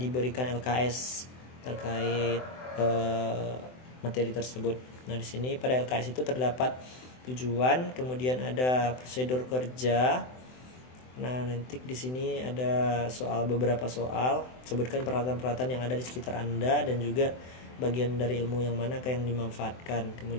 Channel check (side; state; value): right; late; 24 ms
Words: LKS terkait materi tersebut. Nah, di sini pada LKS itu terdapat tujuan, kemudian ada prosedur kerja. Nah, nanti di sini ada beberapa soal, sebutkan peralatan-peralatan yang ada di sekitar Anda dan juga bagian dari ilmu yang mana yang dimanfaatkan.